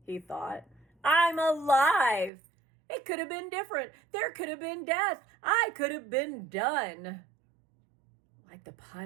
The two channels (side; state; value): left; drops out; at 2.3 s